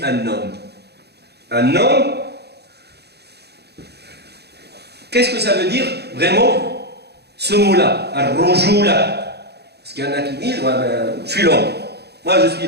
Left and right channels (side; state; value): left; late; 0.48 ms